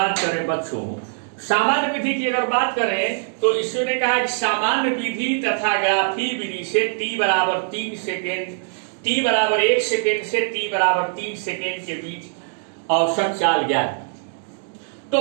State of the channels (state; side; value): silent; left; 63 dB below the other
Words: करें बच्चों, सामान्य विधि की अगर बात करें तो इसने कहा कि सामान्य विधि तथा ग्राफी विधि से t बराबर 3 सेकेंड, t बराबर 1 सेकेंड से t बराबर 3 सेकेंड के बीच औसत चाल ज्ञात।